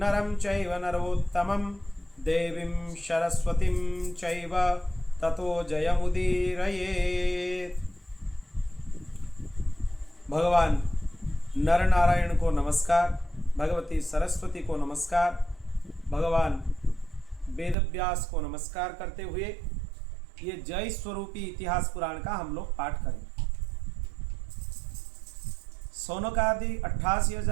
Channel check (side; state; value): left; drops out; at 17.8 s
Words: चैव नरोत्तमं देवीं सरस्वतीं चैव ततो जयमुदीरयेत्। भगवान नर नारायण को नमस्कार, भगवती सरस्वती को नमस्कार, भगवान वेदव्यास को नमस्कार करते हुए ये जय स्वरूपी इतिहास पुराण का हम लोग पाठ करें। सौनकादि